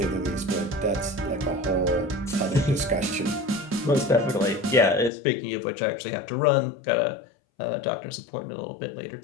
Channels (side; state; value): right; drops out; at 5.1 s